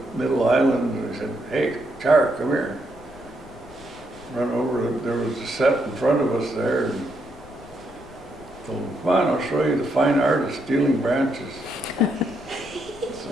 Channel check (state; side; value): noise; left; rumble, 22 dB below the sound